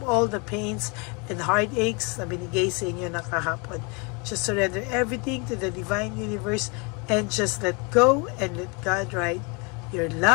all the pains and heartaches na binigay sa inyo ng kahapon. Just surrender everything to the divine universe and just let go and let God write your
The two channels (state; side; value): quieter; right; 31.6 dB